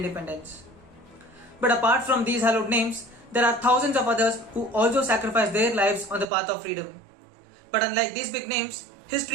But apart from these hallowed names, there are thousands of others who also sacrificed their lives on the path of freedom. But unlike these big names,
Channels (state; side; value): drops out; left; at 6.2 s